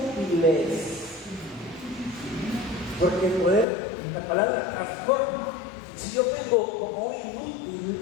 Porque el poder, la palabra transforma. Si yo vengo como un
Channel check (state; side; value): drops out; right; at 3.7 s